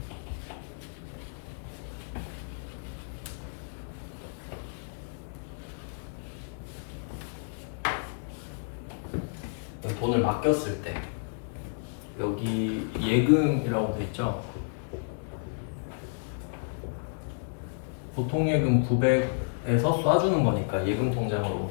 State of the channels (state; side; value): silent; right; digital silence